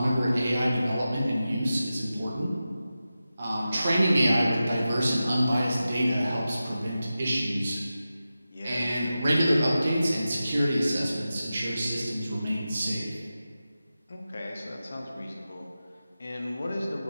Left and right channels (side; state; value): both; inverted; correlation -0.93